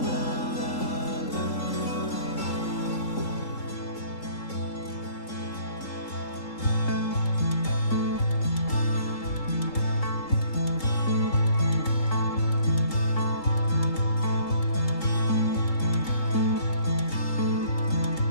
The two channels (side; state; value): right; late; 3.7 ms